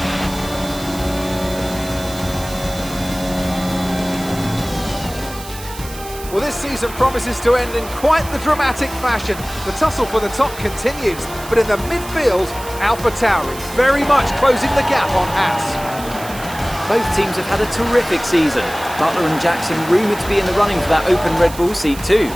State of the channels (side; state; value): right; noise; hiss, 15 dB below the sound